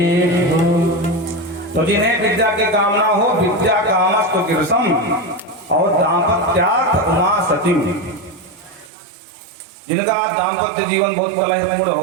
तो जिन्हें विद्या की कामना हो, विद्या कामस्तु गिरसम और दाम्पत्यार्थ उमा सतीम, जिनका दाम्पत्य जीवन बहुत कलहपूर्ण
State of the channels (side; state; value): left; drops out; at 8.9 s